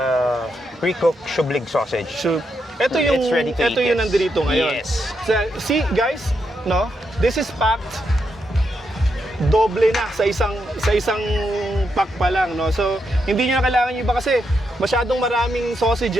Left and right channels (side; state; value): both; normal; correlation 0.82